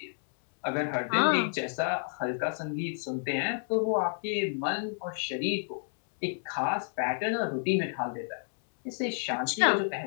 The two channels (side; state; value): right; silent; 58 dB below the other